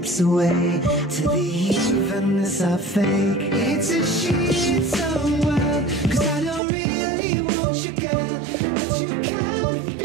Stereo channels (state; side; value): drops out; left; at 6.6 s